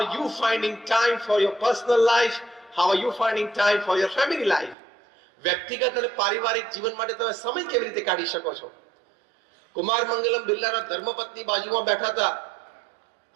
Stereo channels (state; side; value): drops out; left; at 4.8 s